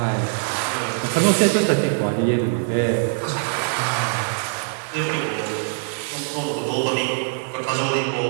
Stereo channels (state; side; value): silent; left; digital silence